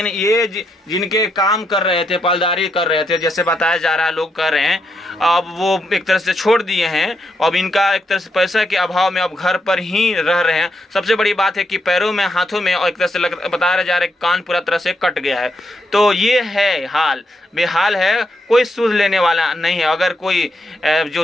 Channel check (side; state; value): both; normal; correlation 0.80